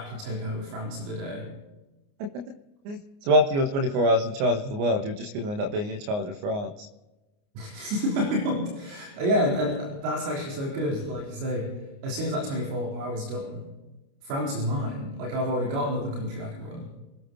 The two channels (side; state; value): left; late; 29 ms